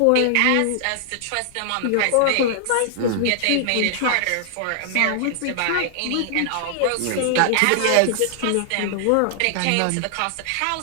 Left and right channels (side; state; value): both; different; correlation -0.01